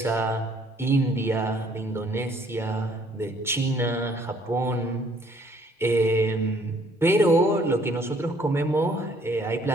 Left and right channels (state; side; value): normal; both; correlation 0.62